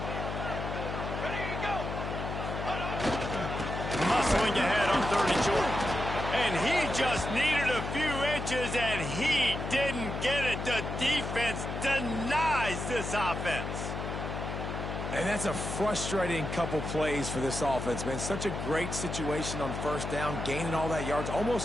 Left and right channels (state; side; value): noise; left; hum, 5 dB below the sound